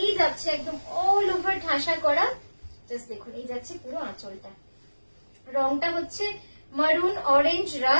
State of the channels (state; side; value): inverted; both; correlation -1.00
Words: যাচ্ছে একদম অল ওভার ঠাসা করা। জাস্ট দেখুন, এই যাচ্ছে পুরো আঁচলটা। রংটা হচ্ছে মারুন, অরেঞ্জ,